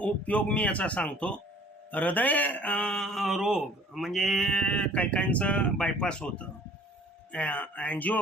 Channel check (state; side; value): normal; both; correlation 0.52